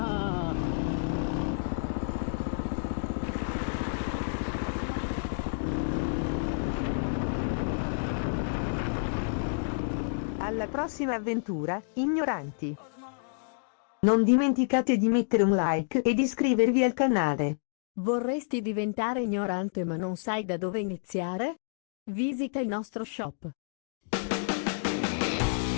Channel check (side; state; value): right; silent; digital silence